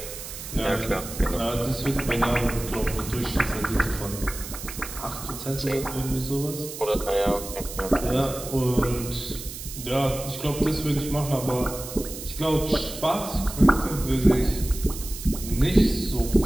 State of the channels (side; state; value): right; noise; hiss, 10 dB below the sound